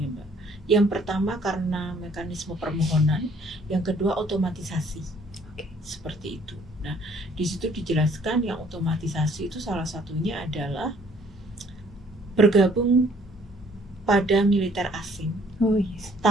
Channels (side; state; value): both; normal; correlation 0.61